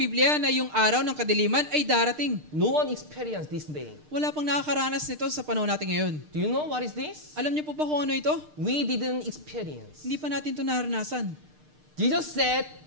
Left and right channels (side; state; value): left; late; 6.6 ms